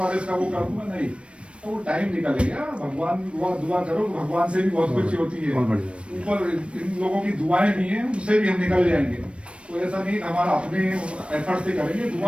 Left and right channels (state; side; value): late; left; 0.060 ms